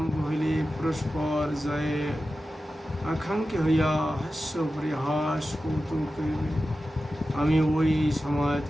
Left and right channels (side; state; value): both; normal; correlation 0.93